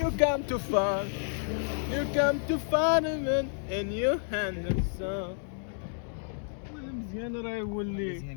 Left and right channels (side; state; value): right; silent; digital silence